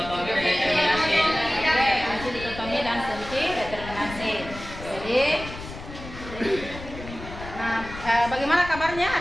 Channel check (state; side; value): noise; left; rumble, 12 dB below the sound